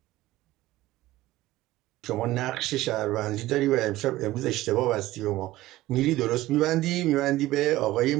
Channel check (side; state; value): left; quieter; 16.5 dB